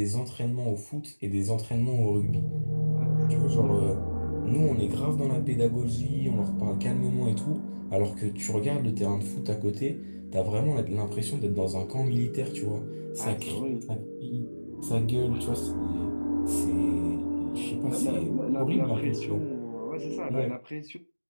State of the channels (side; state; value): both; inverted; correlation -1.00